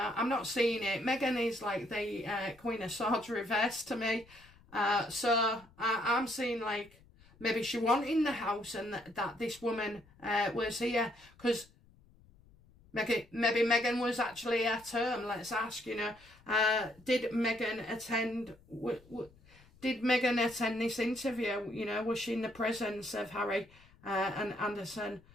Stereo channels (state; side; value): noise; left; rumble, 27 dB below the sound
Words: I'm not seeing it. Megan is like the Queen of Swords reverse to me. So I'm seeing like maybe she wasn't in the house and that this woman was here. Because... Maybe Megan was actually at home. Let's ask, you know, did Megan attend this interview? You know, was she in the presence of Harry and Anderson